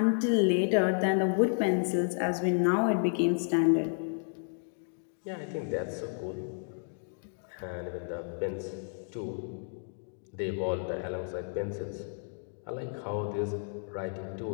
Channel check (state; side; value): silent; right; digital silence